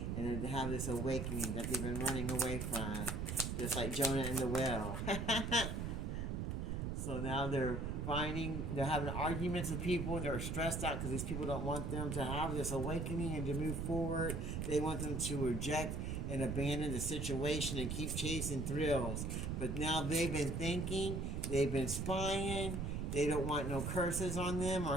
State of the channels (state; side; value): noise; right; rumble, 2 dB below the sound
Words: and to have this awakening that they've been running away from, just like Jonah and the whale. So now they're having arguments with people, and they're stressed out because these people don't want them to have this awakening and to move forward. They want them to reject and abandon the situation and keep chasing thrills. But now they've been thinking, they've been spying, they don't want no curses on them